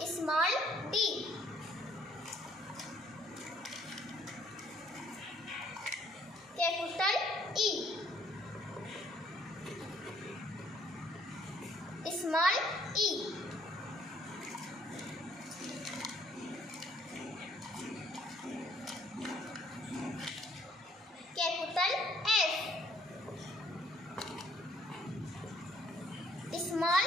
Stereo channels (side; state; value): both; normal; correlation 0.63